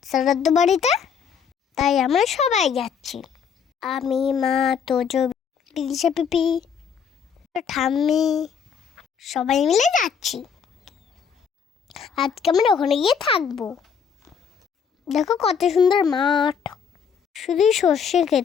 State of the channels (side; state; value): right; quieter; 6.9 dB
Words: শ্রাদ্ধ বাড়িতে, তাই আমরা সবাই যাচ্ছি। আমি, মা, তোজো, বিদিশা পিপি, ঠাম্মি সবাই মিলে যাচ্ছি। আজকে আমরা ওখানে গিয়ে থাকবো। দেখো কত সুন্দর মাঠ, শুধুই সর্ষে